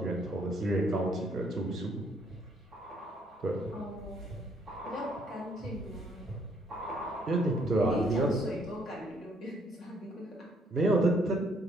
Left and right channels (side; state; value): both; normal; correlation 0.67